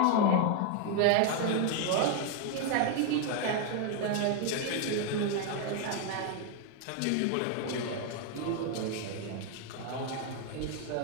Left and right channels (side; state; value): both; different; correlation 0.01